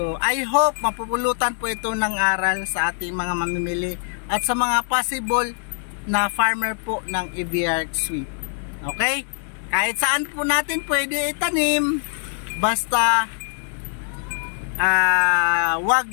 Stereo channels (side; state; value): right; silent; digital silence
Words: I hope mapupulutan po ito ng aral sa ating mga mamimili at sa mga possible na farmer po ng EV-ARC Sweet. Okay? Kahit saan po natin pwede itanim, basta wag